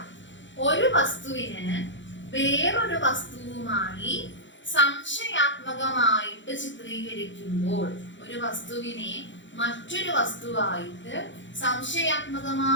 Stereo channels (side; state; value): right; late; 0.54 ms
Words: ഒരു വസ്തുവിന് വേറൊരു വസ്തുവുമായി സംശയാത്മകമായിട്ട് ചിത്രീകരിക്കുമ്പോൾ, ഒരു വസ്തുവിനെ മറ്റൊരു വസ്തുവായിട്ട്